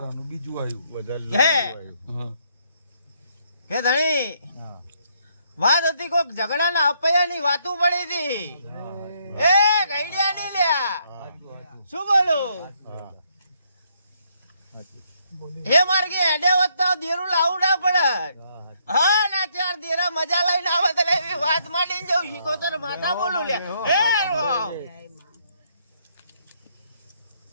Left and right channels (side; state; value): both; inverted; correlation -0.72